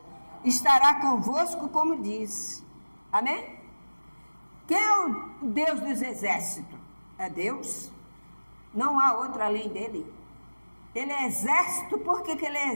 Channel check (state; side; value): inverted; both; correlation -1.00